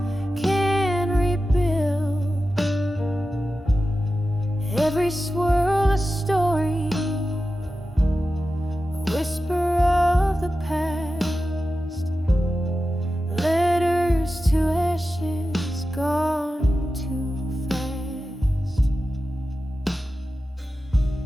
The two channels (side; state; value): both; normal; correlation 0.93